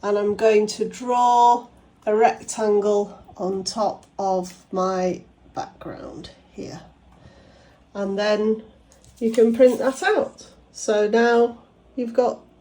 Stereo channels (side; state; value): both; identical; correlation 1.00